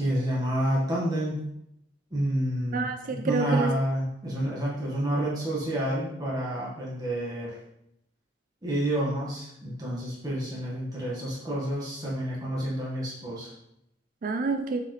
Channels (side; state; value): both; normal; correlation 0.68